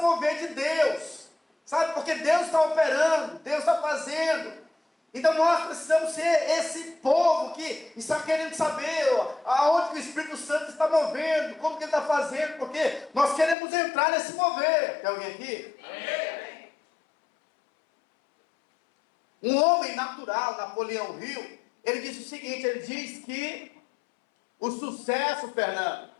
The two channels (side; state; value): right; drops out; at 13.6 s